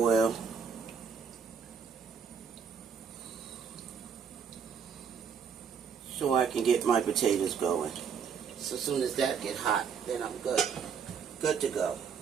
So I can get my potatoes going. So as soon as that get hot, then I'm good. Good to go.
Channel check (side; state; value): left; quieter; 6.8 dB